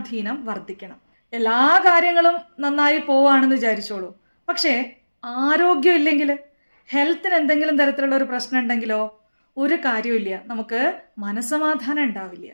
വർദ്ധിക്കണം. എല്ലാ കാര്യങ്ങളും നന്നായി പോവാണെന്ന് വിചാരിച്ചോളൂ, പക്ഷേ ആരോഗ്യം ഇല്ലെങ്കിൽ, ഹെൽത്തിന് എന്തെങ്കിലും തരത്തിലുള്ള ഒരു പ്രശ്നം ഉണ്ടെങ്കിലോ ഒരു കാര്യമില്ല, നമുക്ക് മനസ്സമാധാനം ഉണ്ടാവില്ല.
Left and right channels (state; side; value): inverted; both; correlation -1.00